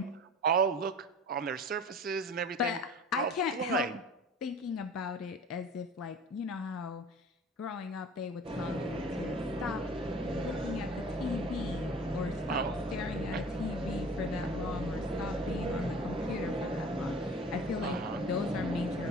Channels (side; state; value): both; normal; correlation 0.43